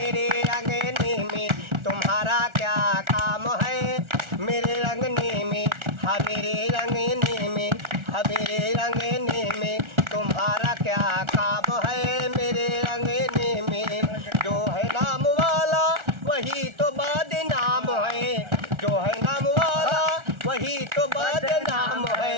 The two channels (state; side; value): late; left; 1.4 ms